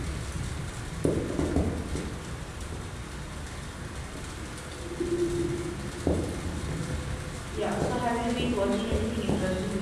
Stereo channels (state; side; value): identical; both; correlation 1.00